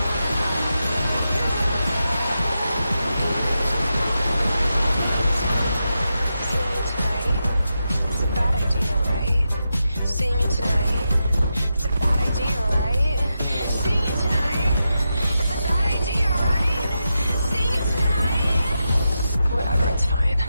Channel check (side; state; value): both; inverted; correlation -0.88